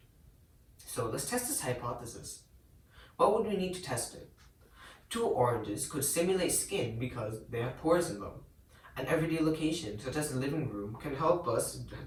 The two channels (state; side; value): identical; both; correlation 1.00